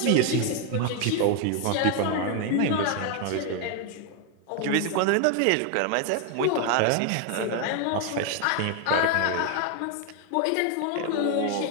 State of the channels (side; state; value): both; different; correlation 0.01